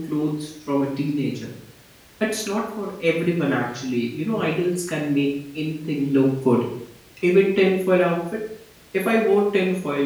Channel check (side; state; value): both; identical; correlation 1.00